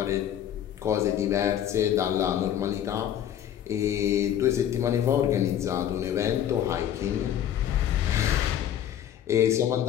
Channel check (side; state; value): right; quieter; 10.4 dB